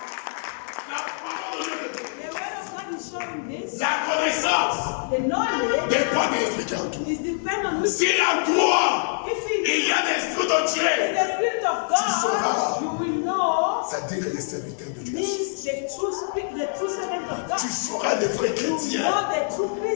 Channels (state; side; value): silent; right; 62 dB below the other